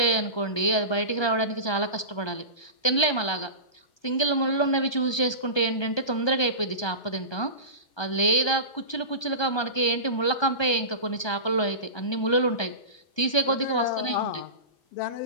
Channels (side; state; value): right; late; 1.2 ms